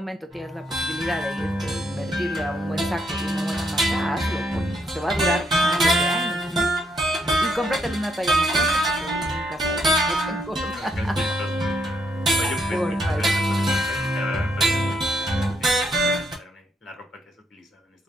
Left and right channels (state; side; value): normal; both; correlation 0.75